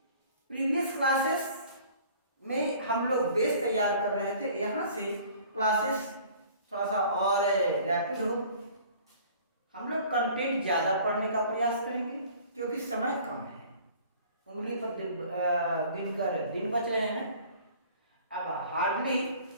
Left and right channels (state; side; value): inverted; both; correlation -0.50